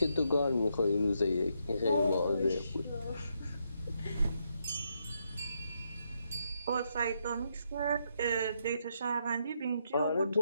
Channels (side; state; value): both; inverted; correlation -0.78